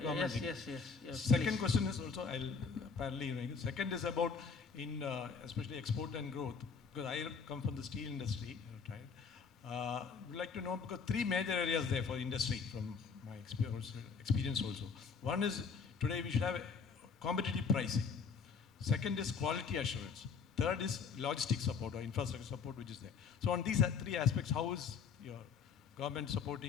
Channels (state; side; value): quieter; right; 5.6 dB